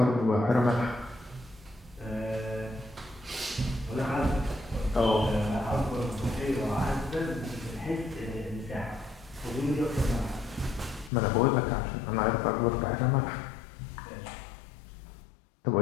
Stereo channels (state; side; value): drops out; right; at 11.1 s